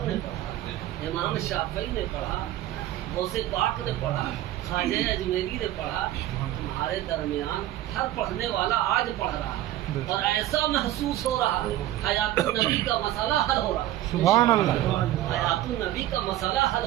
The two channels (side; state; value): left; quieter; 14.0 dB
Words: نے پڑھا، امام شافعی نے پڑھا، غوث پاک نے پڑھا، خواجہ اجمیری نے پڑھا، تمہارے درمیان ہر پڑھنے والا آج پڑھ رہا ہے اور ایسا محسوس ہو رہا ہے حیات النبی کا مسئلہ حل ہو رہا ہے۔ سبحان اللہ۔ حیات النبی کا مسئلہ حل